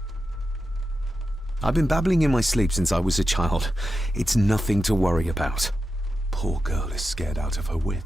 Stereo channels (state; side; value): normal; both; correlation 0.90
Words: I've been babbling in my sleep since I was a child. It's nothing to worry about. Poor girl is scared out of her